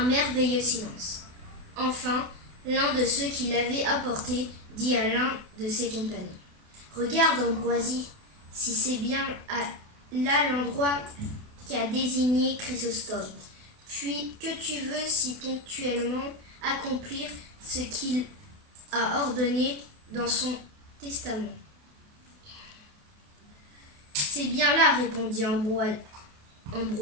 merveilleux silence. Enfin, l'un de ceux qui l'avaient apporté dit à l'un de ses compagnons: « Regarde, Ambroisie, si c'est bien là l'endroit qu'a désigné Chrysostome. Puis que tu veux si ponctuellement accomplir ce qu'il a ordonné dans son testament. » « C'est bien là, répondit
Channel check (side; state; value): left; late; 28 ms